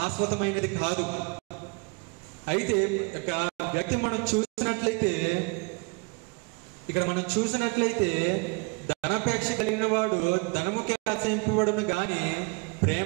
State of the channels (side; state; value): left; quieter; 31.1 dB